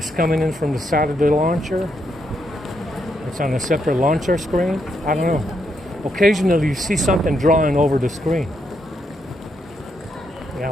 coming in from the side of the launcher. It's on a separate launcher screen. I don't know. Occasionally you see something drawing over the screen.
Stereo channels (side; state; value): both; normal; correlation 0.79